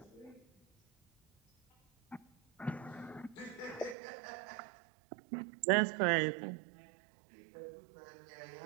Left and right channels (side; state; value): left; drops out; at 4.0 s